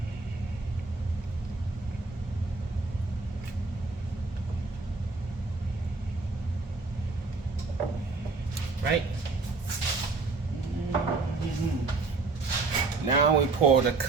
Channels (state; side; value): quieter; left; 3.9 dB